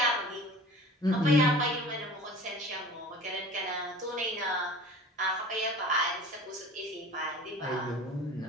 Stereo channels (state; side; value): normal; both; correlation 0.41